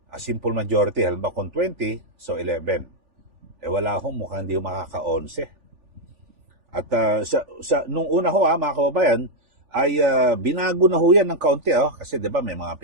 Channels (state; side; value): late; left; 3.4 ms